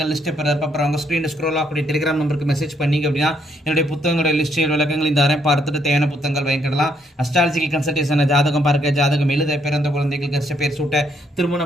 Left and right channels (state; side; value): normal; both; correlation 0.72